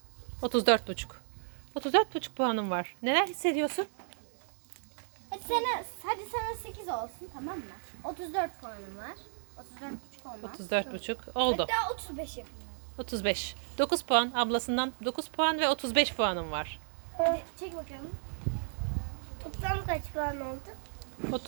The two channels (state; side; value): silent; left; 55 dB below the other